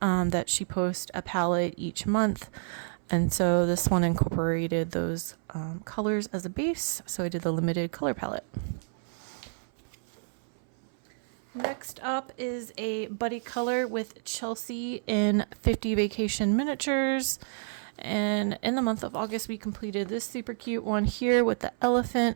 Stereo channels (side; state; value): left; silent; 58 dB below the other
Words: that she posts a palette each month. And so this one incorporated those colors as a base. So I did the limited color palette. Next up is a buddy color with Chelsea in 50 Vacation Miniatures. And in the month of August, we completed this super cute one here with the elephant